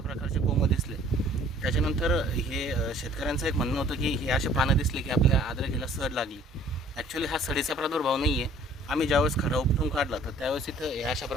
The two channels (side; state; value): both; normal; correlation 0.55